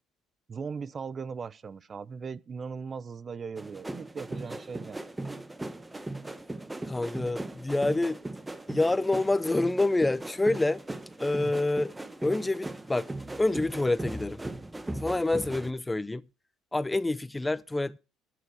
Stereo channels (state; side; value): normal; both; correlation 0.98